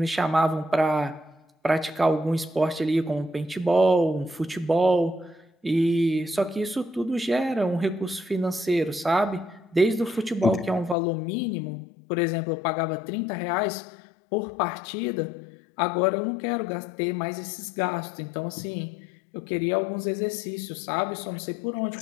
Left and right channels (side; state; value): right; drops out; at 11.0 s